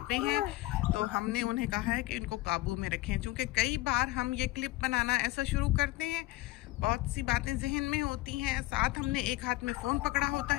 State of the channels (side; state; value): right; quieter; 19.0 dB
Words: पे हैं, तो हमने उन्हें कहा है कि इनको काबू में रखें। क्योंकि कई बार हम ये क्लिप बनाना ऐसा शुरू करते हैं, बहुत सी बातें जहन में होती हैं, साथ हमने एक हाथ में फ़ोन पकड़ा होता